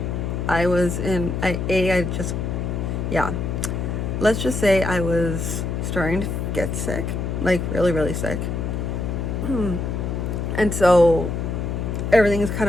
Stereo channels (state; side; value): noise; left; hum, 2 dB below the sound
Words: I was in let's just say I was starting to get sick, like really sick. And so everything is